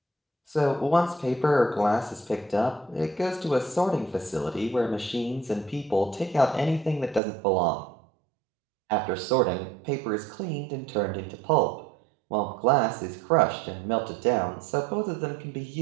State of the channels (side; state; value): left; drops out; at 7.2 s